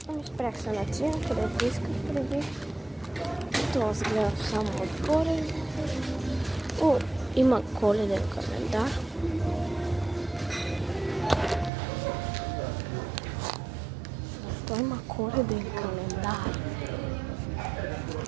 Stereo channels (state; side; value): drops out; left; at 11.7 s